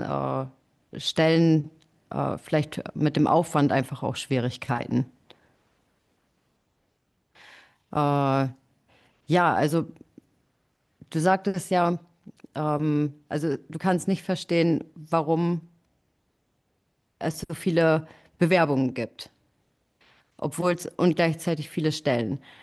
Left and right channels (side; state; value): both; identical; correlation 1.00